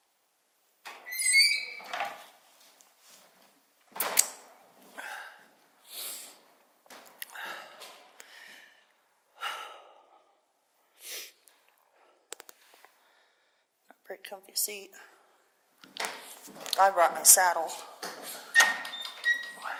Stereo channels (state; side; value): identical; both; correlation 1.00